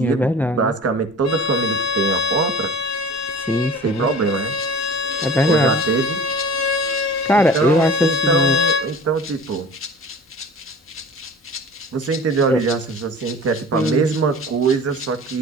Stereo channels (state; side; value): normal; both; correlation 0.41